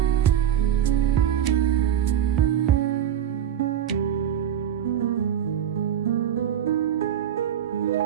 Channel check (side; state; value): left; quieter; 9.7 dB